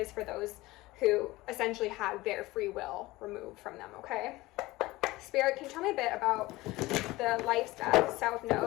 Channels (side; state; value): right; quieter; 19.5 dB